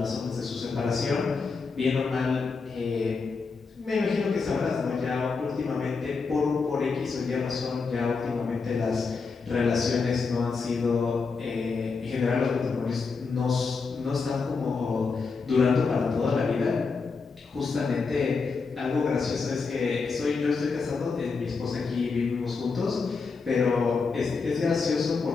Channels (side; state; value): right; quieter; 4.7 dB